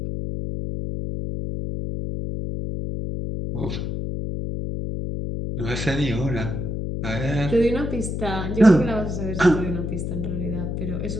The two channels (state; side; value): noise; left; hum, 3 dB below the sound